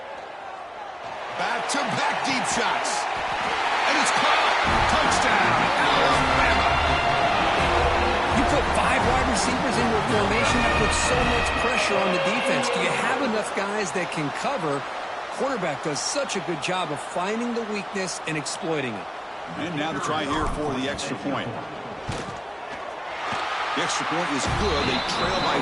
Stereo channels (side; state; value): both; identical; correlation 1.00